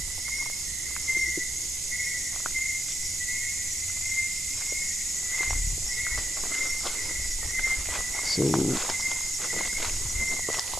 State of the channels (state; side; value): noise; right; hiss, 2 dB below the sound